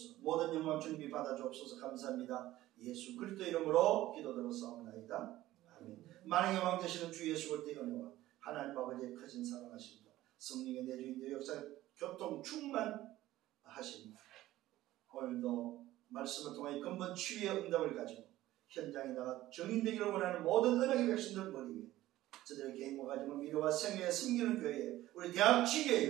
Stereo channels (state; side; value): quieter; left; 15.5 dB